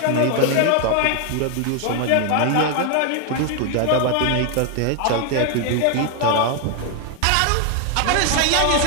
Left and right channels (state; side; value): different; both; correlation 0.00